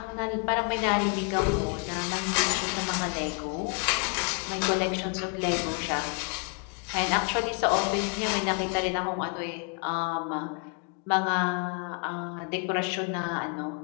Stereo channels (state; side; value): quieter; right; 37.1 dB